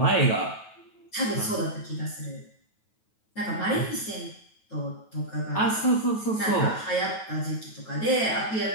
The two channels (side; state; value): right; late; 9.3 ms